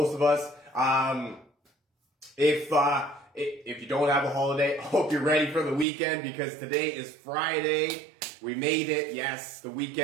of us. If you don't have a holiday, I hope you're ready for the weekend because today is Friday. We made it. Yes, the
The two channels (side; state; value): left; drops out; at 5.9 s